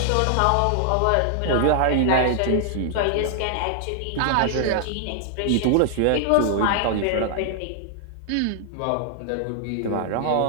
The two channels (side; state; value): both; different; correlation -0.01